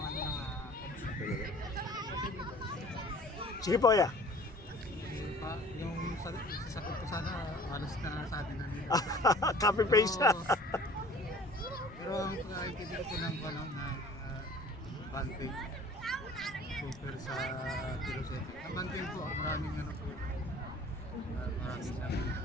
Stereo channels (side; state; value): both; normal; correlation 0.48